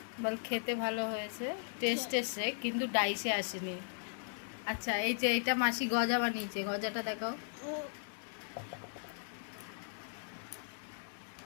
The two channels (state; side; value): silent; right; digital silence